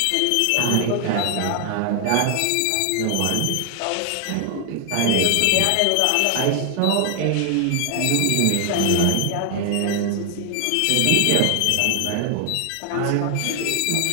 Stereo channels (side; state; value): both; different; correlation 0.00